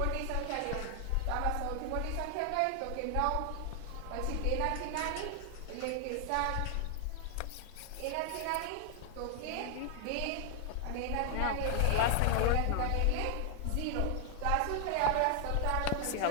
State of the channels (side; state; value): both; different; correlation 0.00